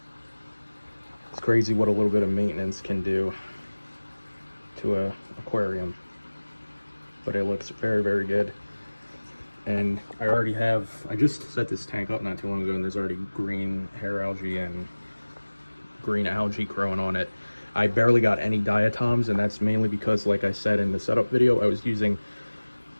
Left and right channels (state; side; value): inverted; both; correlation -1.00